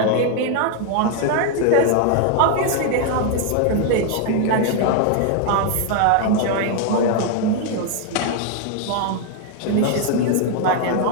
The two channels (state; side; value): different; both; correlation 0.00